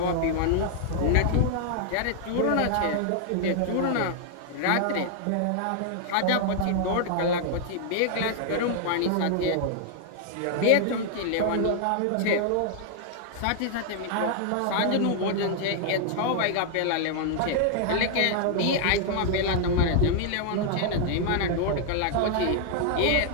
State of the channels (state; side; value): different; both; correlation -0.01